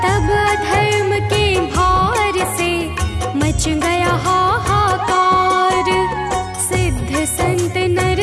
तब अधर्म के भार से मच गया हाहाकार। सिद्ध संत नर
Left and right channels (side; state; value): both; identical; correlation 1.00